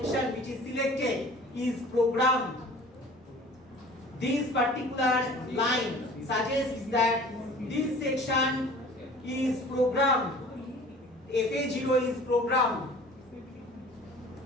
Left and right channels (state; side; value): normal; both; correlation 0.46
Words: which is selected is programmed. This particular line suggests that this section is programmed. FA0 is programmed.